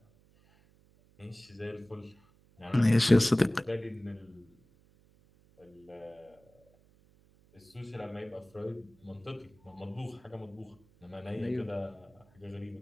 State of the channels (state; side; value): noise; right; hum, 30 dB below the sound